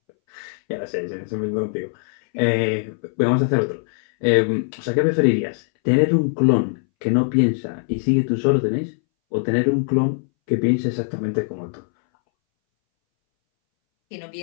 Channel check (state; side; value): silent; right; 63 dB below the other